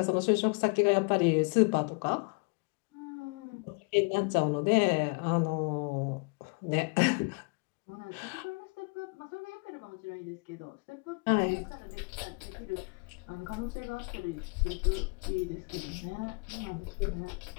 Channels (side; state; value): right; quieter; 33.9 dB